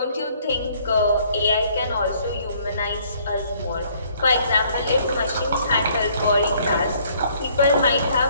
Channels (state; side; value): inverted; both; correlation -0.62